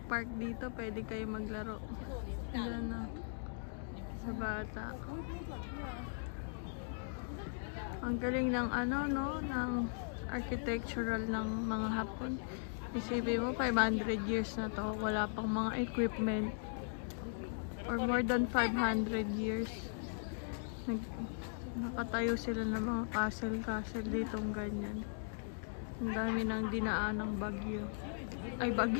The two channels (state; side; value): silent; right; digital silence